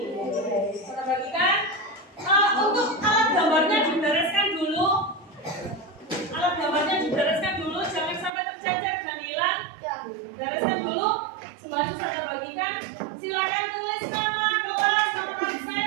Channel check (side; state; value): left; drops out; at 8.3 s